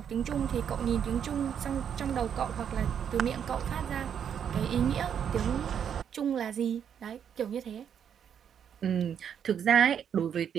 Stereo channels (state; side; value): quieter; left; 8.3 dB